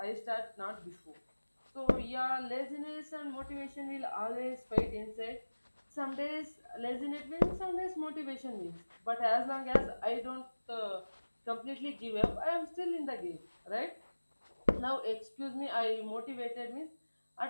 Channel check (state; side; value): inverted; both; correlation -1.00